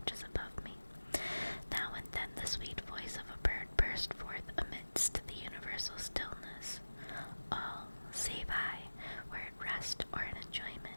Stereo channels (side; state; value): both; inverted; correlation -1.00